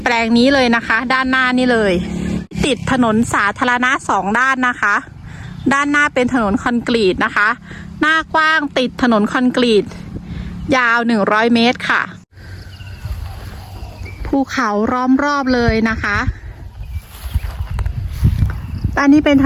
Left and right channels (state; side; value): identical; both; correlation 1.00